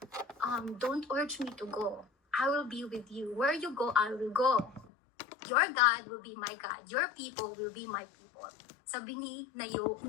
don't urge me to go. I will be with you. Where you go, I will go. Your God will be my God. Your people will be my people. Sabi ni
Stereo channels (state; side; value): drops out; right; at 4.9 s